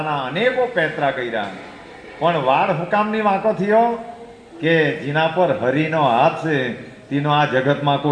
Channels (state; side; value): identical; both; correlation 1.00